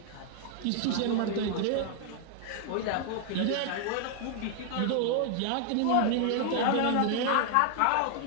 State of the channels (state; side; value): different; both; correlation 0.00